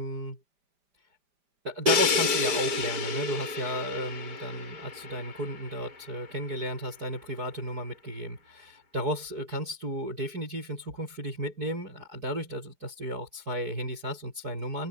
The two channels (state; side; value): late; left; 5.0 ms